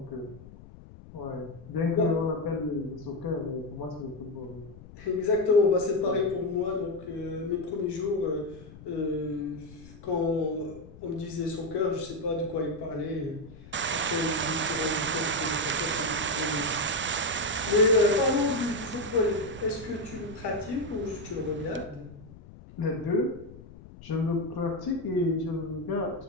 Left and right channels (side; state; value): left; noise; rumble, 18 dB below the sound